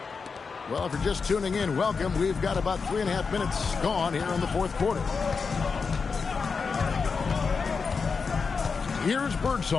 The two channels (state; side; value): quieter; right; 5.1 dB